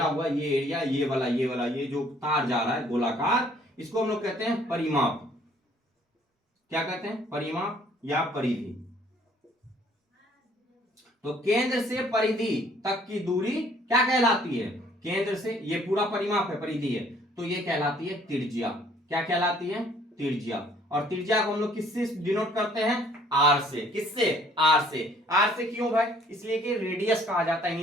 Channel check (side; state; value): both; normal; correlation 0.60